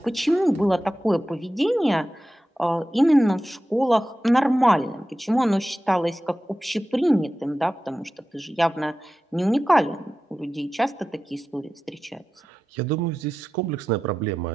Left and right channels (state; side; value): normal; both; correlation 0.93